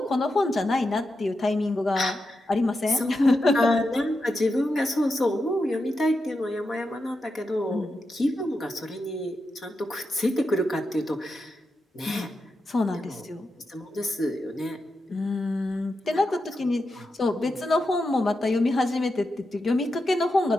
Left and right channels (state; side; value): normal; both; correlation 0.88